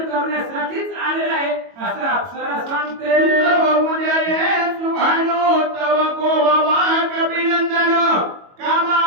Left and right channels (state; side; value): late; left; 22 ms